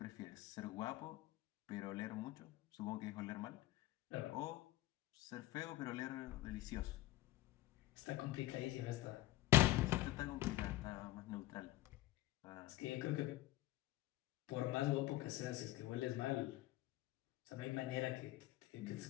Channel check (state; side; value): quieter; right; 16.5 dB